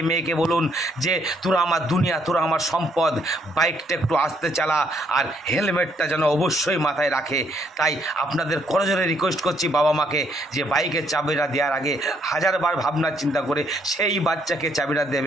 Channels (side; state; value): both; normal; correlation 0.70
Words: মেয়েকে বলুন যে তোরা আমার দুনিয়া, তোরা আমার সম্পদ, বাইকটা একটু আস্তে চালা আর হেলমেটটা যেন অবশ্যই মাথায় রাখে। তাই আপনাদের করজোরে রিকোয়েস্ট করছি বাবা মাকে যে বাইকের চাবিটা দেওয়ার আগে হাজারবার ভাবনা চিন্তা করে সেই বাচ্চাকে চাবিটা